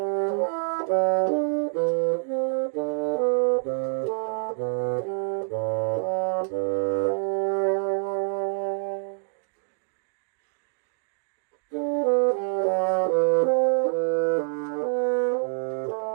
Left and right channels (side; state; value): left; silent; digital silence